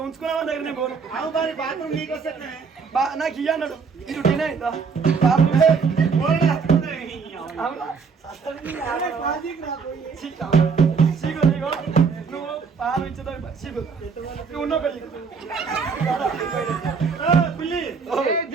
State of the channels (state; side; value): quieter; left; 5.4 dB